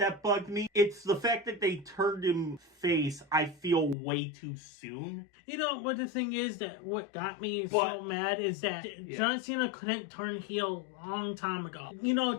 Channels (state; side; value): drops out; right; at 4.0 s